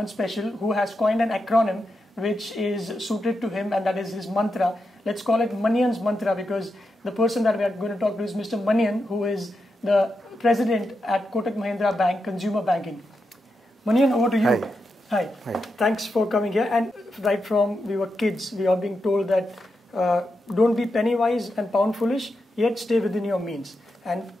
special who has coined an acronym which is suited to him, and that is his mantra. Let's call it Manian's mantra, because the person that we are going to talk to is Mr. Manian, who is the president at Kotak Mahindra Bank, Consumer Banking. Manian, over to you. Hi. Hi. Hi. Thanks for coming here. And right from we were kids, we are being told that don't be penny wise and pound foolish, yet stay within your means. And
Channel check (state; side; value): normal; both; correlation 0.86